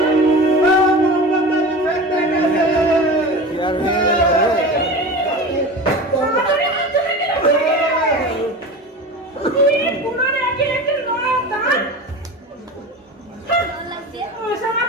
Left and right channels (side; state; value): both; normal; correlation 0.32